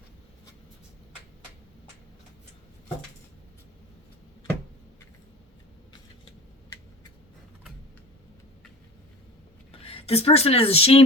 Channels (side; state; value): both; normal; correlation 0.38